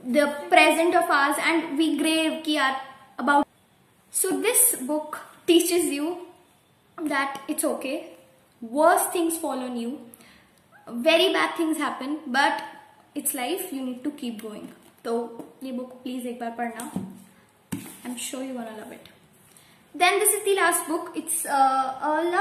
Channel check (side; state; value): both; identical; correlation 1.00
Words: the present of ours, and we grave about. So this book teaches you that it's okay. Worse things fall on you. very bad things happen, but it's life, you need to keep going. तो ये book please एक बार पढ़ना. I'm sure you're gonna love it. Then this is the last book. It's a